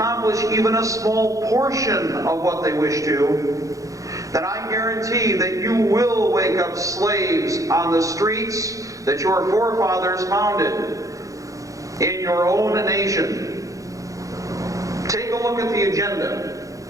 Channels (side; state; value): left; late; 0.16 ms